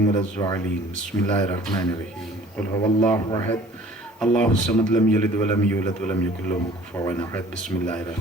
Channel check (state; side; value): normal; both; correlation 0.51